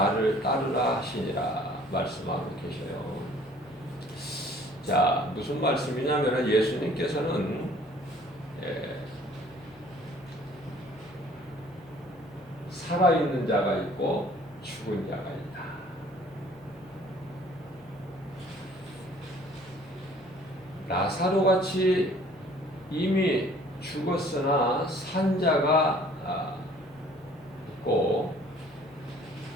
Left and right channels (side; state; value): left; noise; hum, 26 dB below the sound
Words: 따르라 하시니라 말씀하고 계셔요. 자, 무슨 말씀이냐면 예수님께서는 살아있는 자가 있고 죽은 자가 있다. 라사로 같이 이미 죽었으나 산 자가 있고